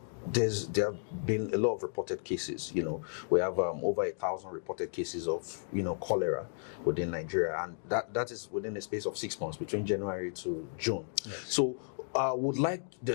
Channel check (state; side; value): silent; right; digital silence